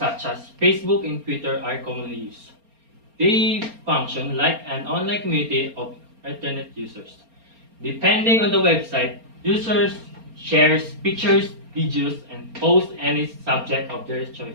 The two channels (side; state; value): left; late; 4.3 ms